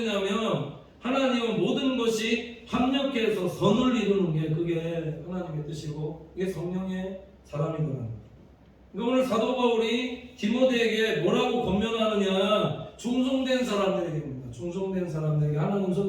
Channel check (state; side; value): identical; both; correlation 1.00